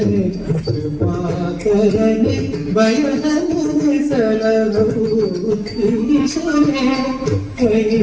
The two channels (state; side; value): identical; both; correlation 1.00